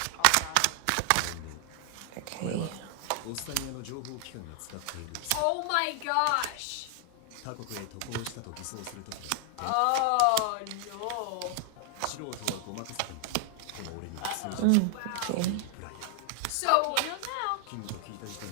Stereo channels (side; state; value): both; different; correlation 0.00